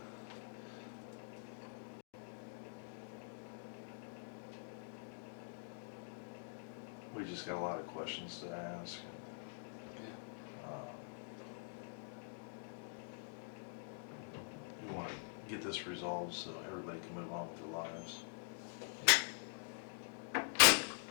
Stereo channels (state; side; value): silent; right; digital silence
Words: we just got a lot of questions to ask. We want to get this resolved so everybody can move on with their lives.